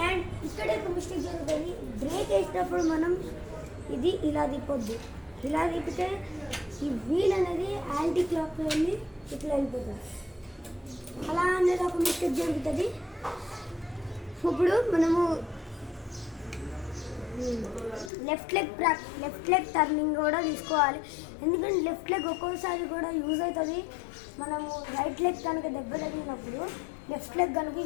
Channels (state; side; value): drops out; right; at 18.1 s